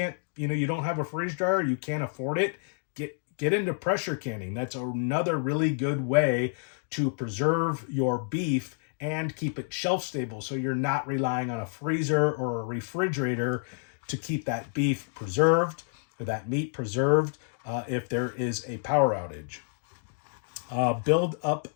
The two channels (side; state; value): right; silent; digital silence